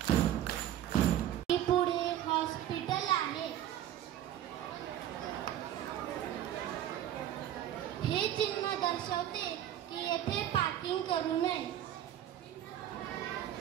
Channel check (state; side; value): quieter; left; 11.6 dB